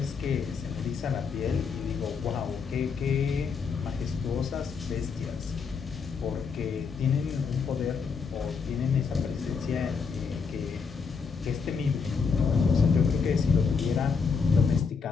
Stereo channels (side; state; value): right; quieter; 5.5 dB